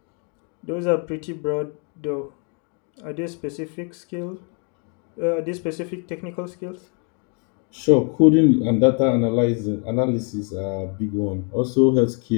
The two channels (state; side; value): quieter; right; 38.4 dB